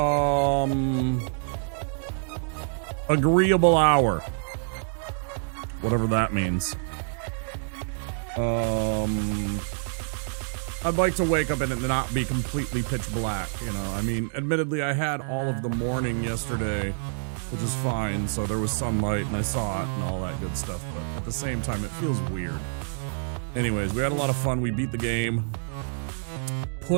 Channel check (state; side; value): silent; left; digital silence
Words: agreeable hour. Whatever that means. I'd like to wake up and it not be completely pitch black, you know. I mean, admittedly, I had all of the morning yesterday, which is fine, so there was sunlight and I saw it and all that good stuff, but at the same time, it feels weird. Anyways, we had a lot of fun. We beat the game.